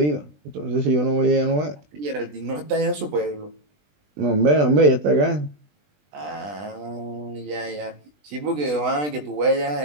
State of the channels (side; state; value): left; late; 20 ms